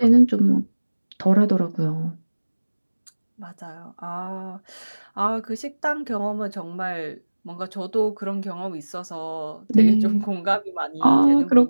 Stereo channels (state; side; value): inverted; both; correlation -1.00